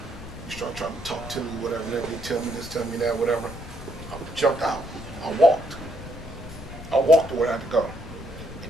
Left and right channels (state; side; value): noise; left; rumble, 12 dB below the sound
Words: You start trying to talk to me, whatever, and everything, tell me this, tell me that, whatever. I jumped out. I walked. I walked to where I had to go.